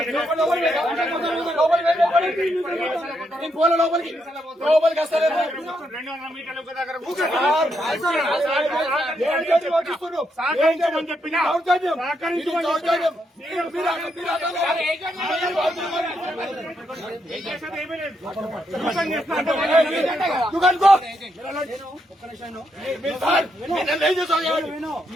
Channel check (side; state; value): both; normal; correlation 0.79